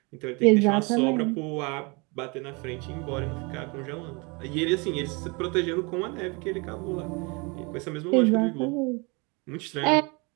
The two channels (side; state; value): left; quieter; 29.4 dB